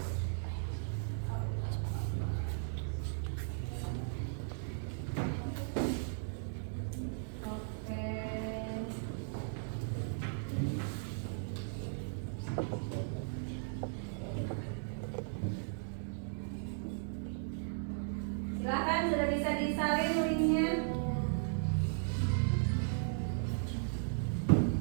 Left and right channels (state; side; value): silent; left; digital silence